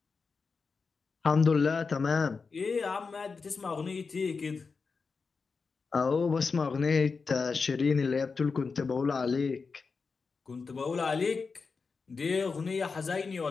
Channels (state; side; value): quieter; right; 4.8 dB